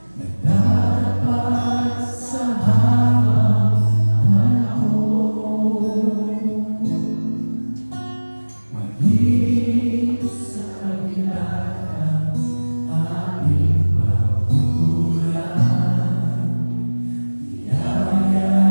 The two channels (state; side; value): inverted; both; correlation -1.00